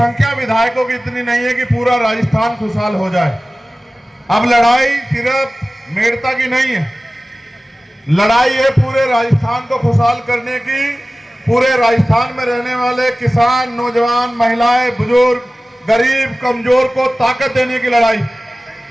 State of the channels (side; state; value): both; normal; correlation 0.97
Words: विधायकों की इतनी नहीं है कि पूरा राजस्थान खुशहाल हो जाए। अब लड़ाई सिर्फ मेड़ता की नहीं है, लड़ाई है पूरे राजस्थान को खुशहाल करने की। पूरे राजस्थान में रहने वाले किसान, नौजवान, महिलाएं, बुजुर्ग, गरीब, कमजोर को ताकत देने की लड़ाई।